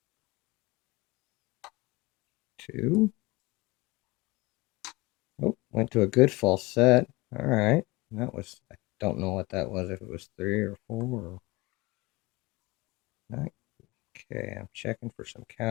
2. Oh, went to a good false set. All right. That was, I don't know what that was, if it was 3 or 4 or 9. Okay, I'm checking for some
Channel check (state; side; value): quieter; right; 22.7 dB